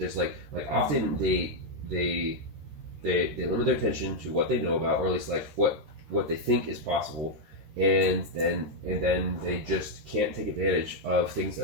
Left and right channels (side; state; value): left; late; 13 ms